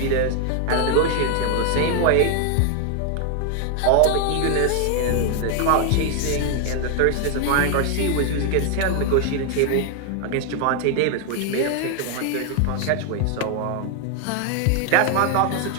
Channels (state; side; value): different; both; correlation 0.01